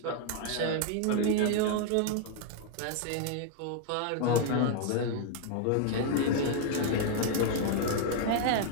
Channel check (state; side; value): different; both; correlation 0.00